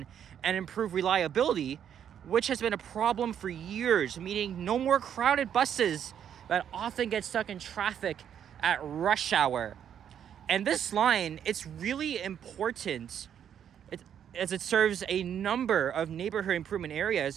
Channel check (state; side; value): quieter; left; 9.1 dB